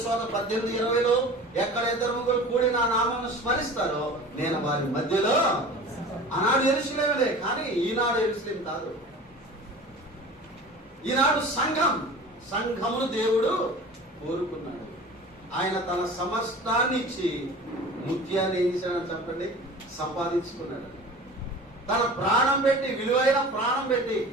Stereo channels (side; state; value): both; normal; correlation 0.39